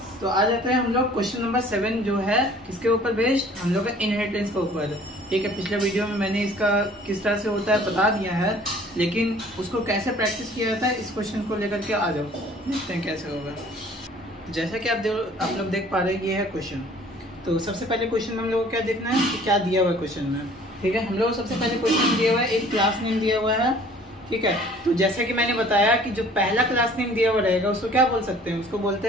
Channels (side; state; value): both; normal; correlation 0.52